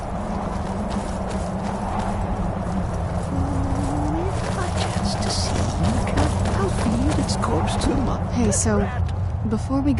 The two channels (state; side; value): identical; both; correlation 1.00